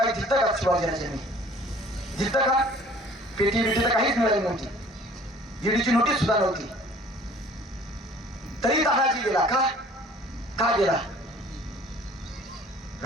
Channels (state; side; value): normal; both; correlation 0.51